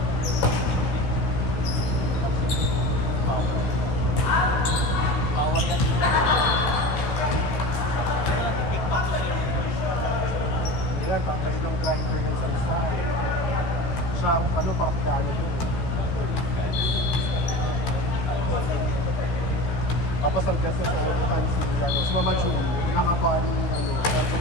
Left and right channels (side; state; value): right; late; 16 ms